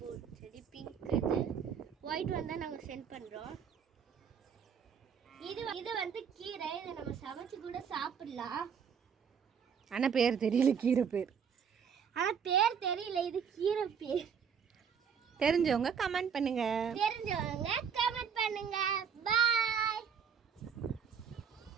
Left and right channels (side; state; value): left; quieter; 7.2 dB